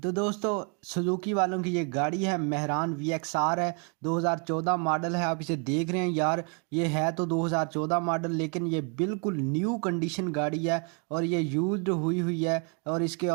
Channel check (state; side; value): quieter; left; 37.3 dB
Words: दोस्तों सुजुकी वालों की ये गाड़ी है मेहरान VXR है, 2014 मॉडल है। आप इसे देख रहे हैं यार, ये है तो 2014 मॉडल लेकिन ये बिल्कुल न्यू कंडीशन गाड़ी है और ये यूज्ड हुई है। और इसके